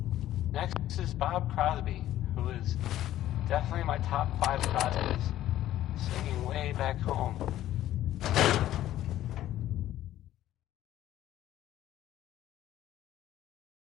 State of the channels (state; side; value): quieter; right; 13.3 dB